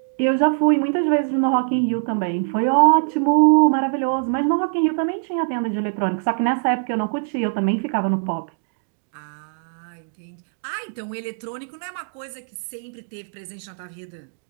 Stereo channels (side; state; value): left; silent; digital silence